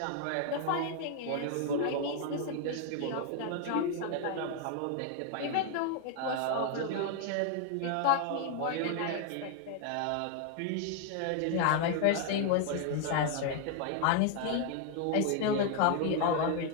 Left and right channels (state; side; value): different; both; correlation 0.00